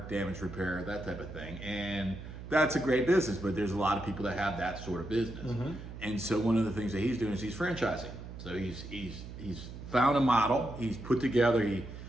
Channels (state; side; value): noise; right; hum, 11 dB below the sound